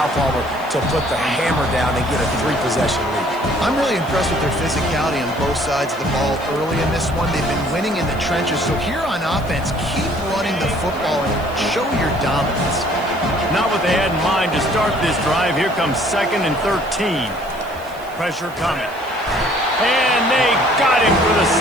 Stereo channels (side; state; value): right; noise; hiss, 23 dB below the sound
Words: Palmer, to put the hammer down and get a 3-possession lead. I'm really impressed with their physicality on both sides of the ball early in this one. They've been winning in the trenches. So here on offense, keep running the football and show your dominance. Not what they had in mind to start this drive. Here comes 2nd and 13. Pressure coming. And they got him for the